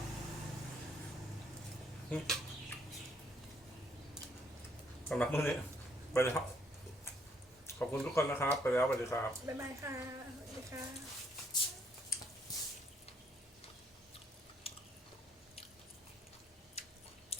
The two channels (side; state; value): both; normal; correlation 0.68